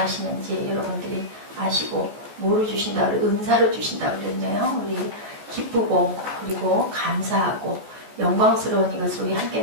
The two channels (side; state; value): left; late; 14 ms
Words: 여러분들이 아시고 뭐로 주신다, 은사로 주신다 그랬네요. 우리 기쁘고 그리고 감사하고 영광스러운 이것을 우리 함께